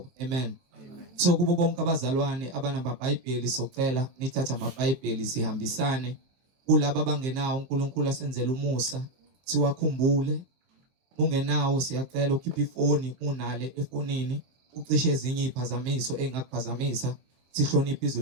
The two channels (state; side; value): late; left; 23 ms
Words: Amen. So kubo bonke abazalwane abanamabhayibheli socela nithatha amabhayibheli sihambisane kulabo abangenawo uNkulunkulu asenzele umusa siwakhumbule. Ungenawo siyacela ukhiphe ifoni, unale efonini ucishe ezinye iziphazamiso engakuphazamisa, sihloniphe izwi